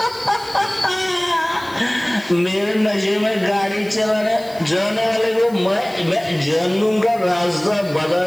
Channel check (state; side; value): noise; left; hiss, 22 dB below the sound